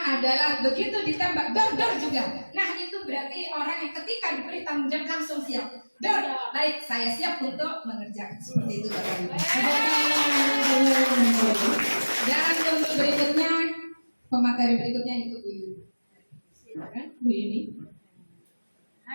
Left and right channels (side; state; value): both; inverted; correlation -1.00